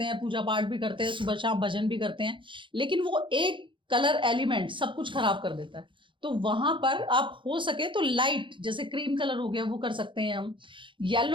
हैं, पूजा पाठ भी करते हैं, सुबह शाम भजन भी करते हैं, लेकिन वो एक कलर एलिमेंट सब कुछ खराब कर देता है। तो वहां पर आप हो सके तो लाइट, जैसे क्रीम कलर हो गया वो कर सकते हैं हम,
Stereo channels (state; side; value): late; left; 0.24 ms